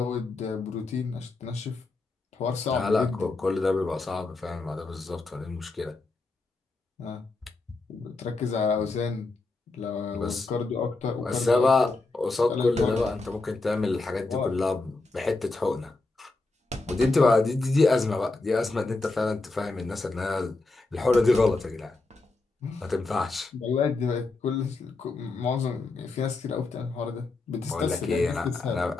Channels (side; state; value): right; quieter; 3.4 dB